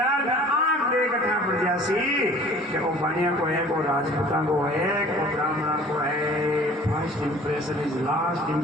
में 8 देखा पड़ जासी कि वो पानिया को है, को राजपूता को है, को ब्राह्मणा को है। First impression is last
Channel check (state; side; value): normal; both; correlation 0.48